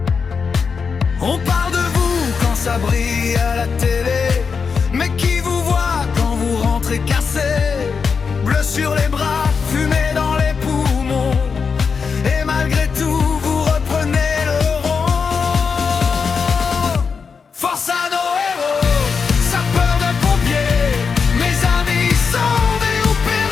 On parle de vous quand ça brille à la télé, mais qui vous voit quand vous rentrez cassé? Bleu sur les bras, fumée dans les poumons, et malgré tout vous reprenez le rond. Force à nos héros, sapeurs de pompiers, mes amis sauvés ou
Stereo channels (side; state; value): right; quieter; 5.6 dB